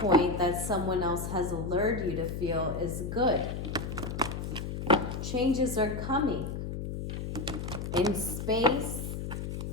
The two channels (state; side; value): noise; left; hum, 5 dB below the sound